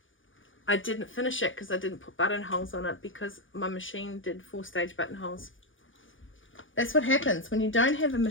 I didn't finish it because I didn't put buttonholes on it because my machine did 4-stage buttonholes. That's what happens when you don't have a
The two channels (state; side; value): late; right; 0.57 ms